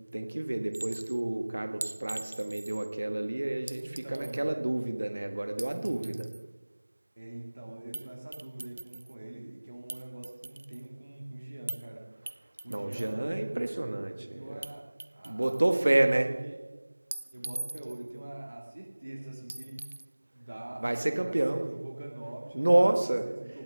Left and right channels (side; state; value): both; inverted; correlation -1.00